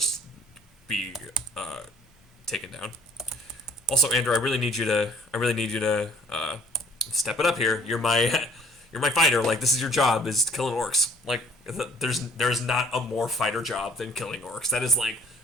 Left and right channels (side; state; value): both; normal; correlation 0.55